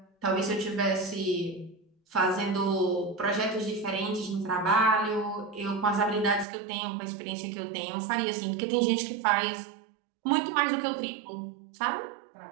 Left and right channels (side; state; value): left; drops out; at 6.5 s